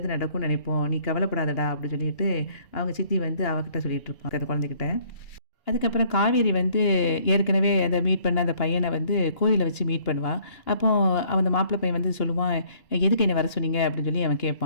நடக்கும்னு நினைப்போம். நீ கவலைப்படாதடா." அப்படின்னு சொல்லிட்டு அவங்க சித்தி வந்து அவகிட்ட சொல்லிட்டு இருப்பாங்க அந்த குழந்தைகிட்ட. அதுக்கப்புறம் காவேரி வந்து ஏற்கனவே அத மீட் பண்ண அந்த பையன வந்து கோயில்ல வச்சு மீட் பண்ணுவா. அப்போ அந்த மாப்பிள பையன் வந்து சொல்லுவான், "எதுக்கு என்ன வர சொன்னீங்க?" அப்படின்னு சொல்லி அவன்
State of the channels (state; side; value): late; right; 2.9 ms